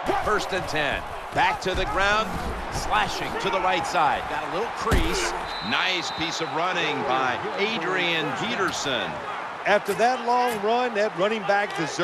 First and 10. Back to the ground, slashing to the right side. Got a little crease. Nice piece of running by Adrian Peterson. After that long run, that running back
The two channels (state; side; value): identical; both; correlation 1.00